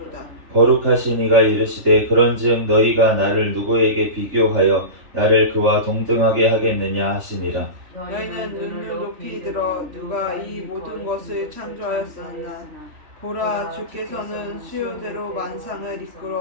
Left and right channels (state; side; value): late; left; 3.4 ms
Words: 거룩하신 이가 이르시되 그런즉 너희가 나를 누구에게 비교하여 나를 그와 동등하게 하겠느냐 하시니라. 너희는 눈을 높이 들어 누가 이 모든 것을 창조하였으나 보라 주께서는 수요대로 만상을